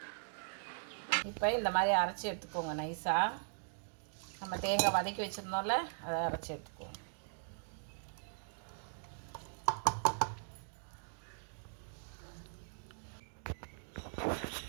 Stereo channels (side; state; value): left; silent; digital silence